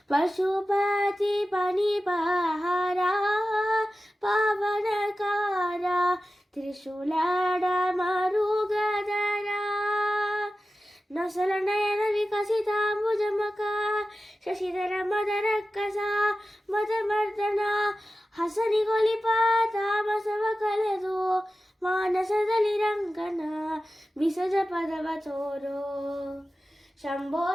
पशुपति पनिपहारा पावनकारा त्रिशूलाड मरुगधरा नसल नयन विकसिताम्बुजमका शशिधर मदरಕ್ಕಸ ಮದಮರ್ದನ ಹಸನಿಗೊಲಿಪ ತಾಮಸವ ಕಲೆದು ಮಾನಸದಲ್ಲಿ ರಂಗನ ಬಿಸಜ ಪದವ ತೋರೋ ಶಂಭೋ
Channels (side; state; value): both; normal; correlation 0.94